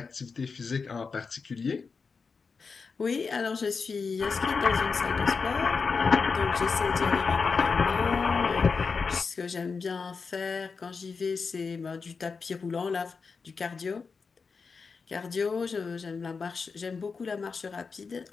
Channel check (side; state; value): right; quieter; 5.0 dB